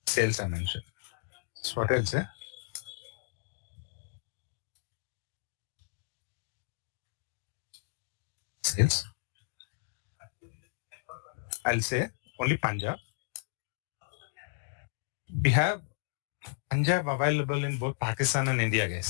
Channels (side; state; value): right; silent; digital silence